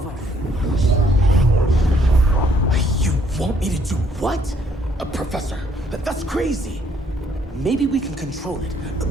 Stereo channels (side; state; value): both; normal; correlation 0.66